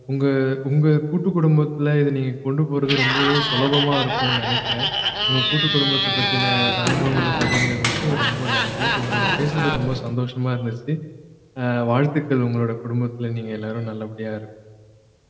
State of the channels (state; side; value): identical; both; correlation 1.00